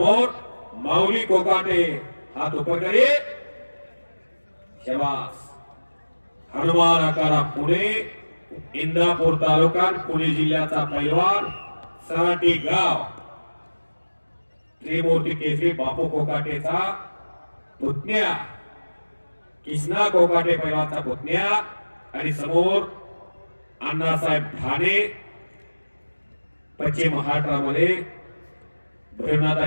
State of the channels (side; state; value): both; inverted; correlation -1.00